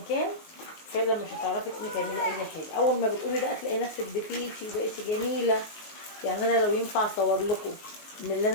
كان، فعلا مش هتعرفي تقومي تعملي اي حاجه. اول ما بتقومي بقى تلاقي نفسك دفيتي وبقيتي جميله. يعني انا لو ينفع اصور لكم من اللي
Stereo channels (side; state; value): right; late; 19 ms